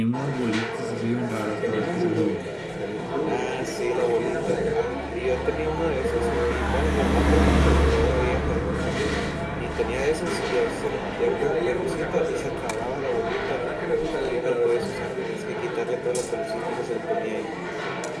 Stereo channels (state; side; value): identical; both; correlation 1.00